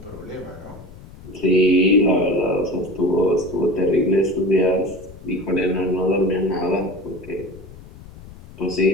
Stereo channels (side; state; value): left; noise; rumble, 18 dB below the sound